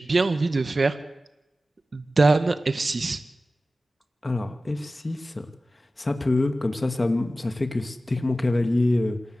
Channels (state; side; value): normal; both; correlation 0.95